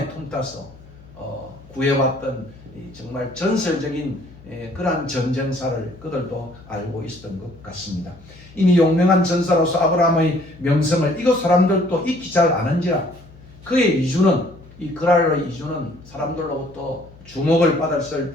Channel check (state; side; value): noise; left; hum, 22 dB below the sound